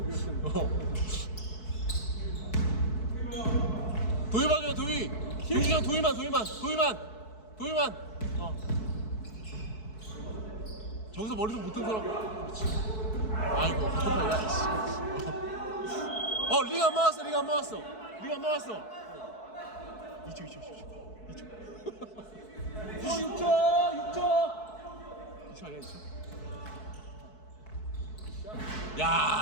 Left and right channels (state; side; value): late; right; 4.6 ms